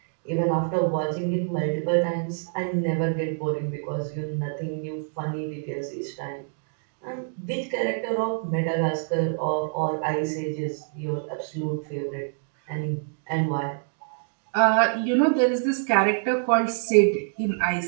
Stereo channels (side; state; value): left; silent; digital silence